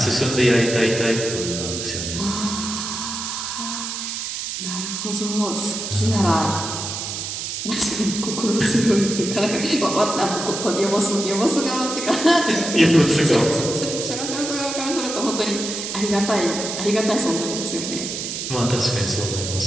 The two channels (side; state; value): right; noise; hiss, 5 dB below the sound